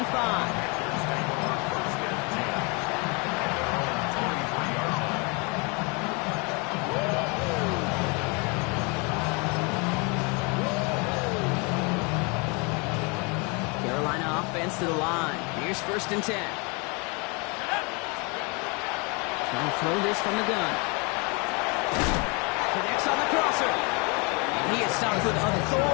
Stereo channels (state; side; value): quieter; right; 31.0 dB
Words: Carolina offense to the line. Here's 1st and 10. Trying to throw this from the gun. Connects on the crosser. He is stopped with